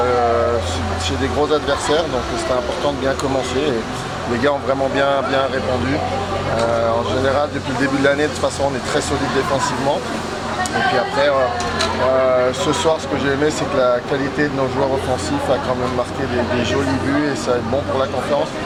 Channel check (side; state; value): both; identical; correlation 1.00